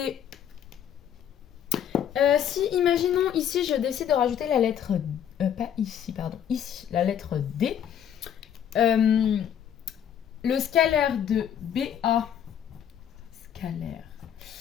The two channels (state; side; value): quieter; right; 9.4 dB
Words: si imaginons ici je décide de rajouter la lettre, pas ici, pardon, ici, la lettre D, le scalaire de BA, scalaire